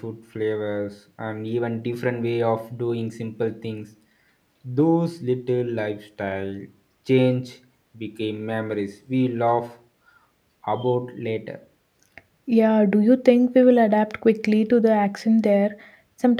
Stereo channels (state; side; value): identical; both; correlation 1.00